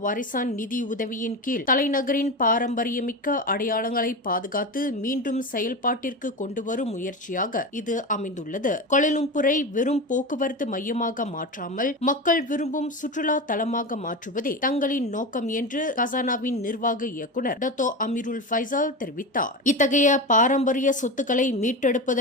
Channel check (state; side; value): normal; both; correlation 0.22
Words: வாரிசான் நிதி உதவியின் கீழ் தலைநகரின் பாரம்பரியமிக்க அடையாளங்களை பாதுகாத்து மீண்டும் செயல்பாட்டிற்கு கொண்டுவரும் முயற்சியாக இது அமைந்துள்ளது. கோலாலம்பூரை வெறும் போக்குவரத்து மையமாக மாற்றாமல் மக்கள் விரும்பும் சுற்றுலா தலமாக மாற்றுவதே தங்களின் நோக்கம் என்று கசானாவின் நிர்வாக இயக்குநர் டத்தோ அமீருல் ஃபைசால் தெரிவித்தார். இத்தகைய பாரம்பரிய சொத்துக்களை